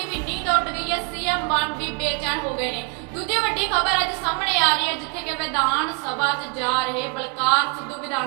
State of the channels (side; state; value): left; quieter; 34.1 dB